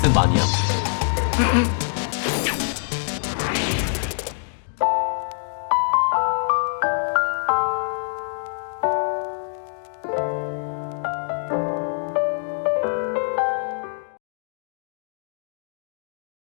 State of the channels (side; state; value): right; silent; digital silence